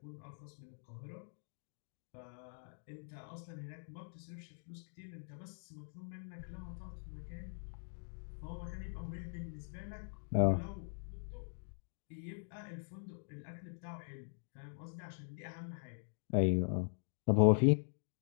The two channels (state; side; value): silent; right; digital silence